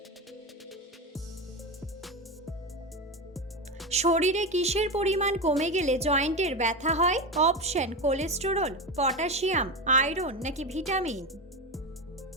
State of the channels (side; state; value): both; normal; correlation 0.18